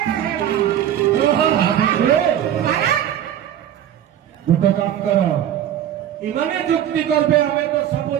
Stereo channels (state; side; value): quieter; left; 10.7 dB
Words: गोटे काम कर इमाने जुक्ति करबे हमें तो